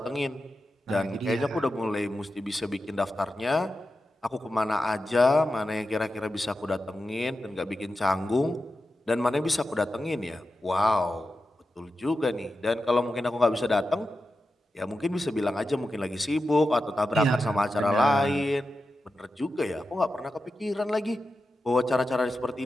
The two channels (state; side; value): normal; both; correlation 0.91